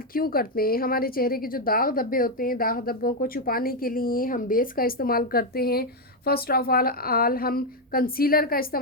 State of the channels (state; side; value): normal; both; correlation 0.03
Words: क्यों करते हैं? हमारे चेहरे के जो दाग धब्बे होते हैं, दाग धब्बों को छुपाने के लिए हम बेस का इस्तेमाल करते हैं। फर्स्ट ऑफ ऑल हम कंसीलर का